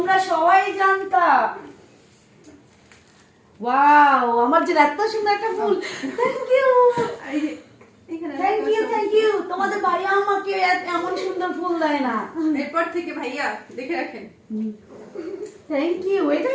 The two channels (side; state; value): both; identical; correlation 1.00